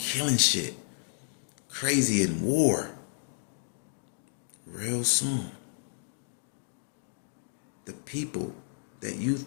shit. Crazy in war. Real soon. The people that you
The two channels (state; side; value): silent; right; 57 dB below the other